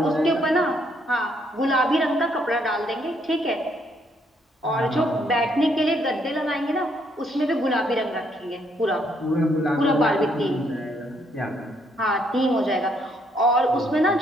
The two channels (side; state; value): both; normal; correlation 0.71